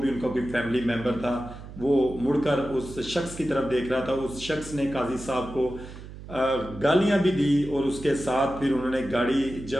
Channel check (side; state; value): right; noise; hum, 14 dB below the sound